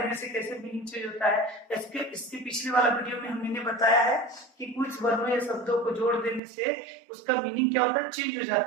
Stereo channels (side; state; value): left; drops out; at 6.4 s